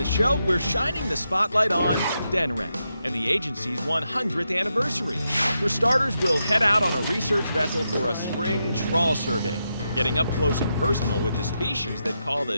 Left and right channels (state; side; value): inverted; both; correlation -0.85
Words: show, we're shining the spotlight on Denrec and the agency's 100th anniversary. For starters, we'll head out on a research vessel for a spring trawl survey, getting up close and personal with the species that call